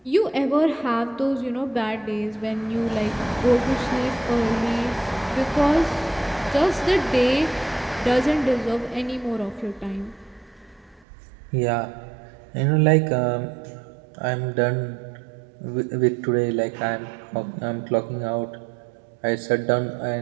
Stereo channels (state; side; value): drops out; left; at 11.1 s